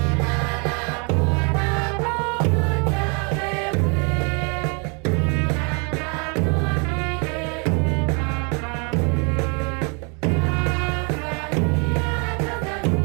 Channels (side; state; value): left; quieter; 34.5 dB